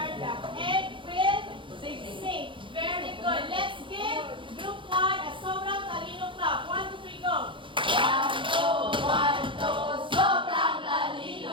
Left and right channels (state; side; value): late; left; 0.24 ms